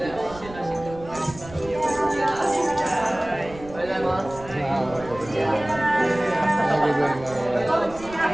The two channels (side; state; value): right; noise; rumble, 17 dB below the sound